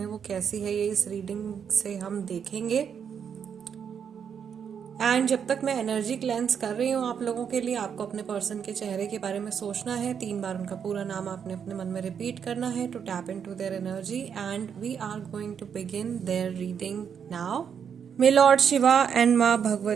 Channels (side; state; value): left; quieter; 7.5 dB